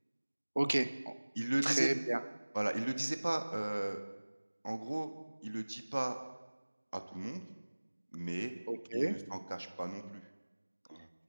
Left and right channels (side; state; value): both; inverted; correlation -1.00